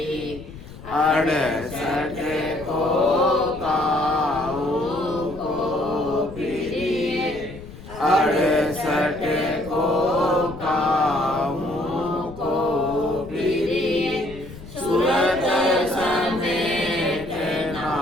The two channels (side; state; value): left; noise; rumble, 15 dB below the sound